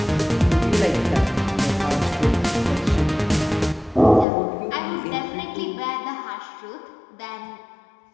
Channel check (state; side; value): drops out; right; at 4.2 s